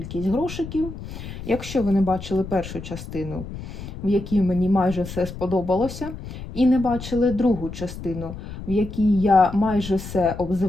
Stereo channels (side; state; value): left; noise; rumble, 10 dB below the sound